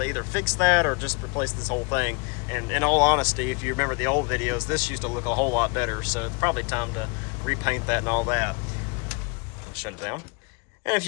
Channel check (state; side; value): quieter; right; 32.0 dB